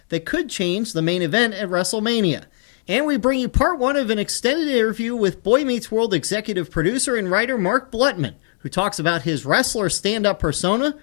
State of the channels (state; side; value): silent; right; digital silence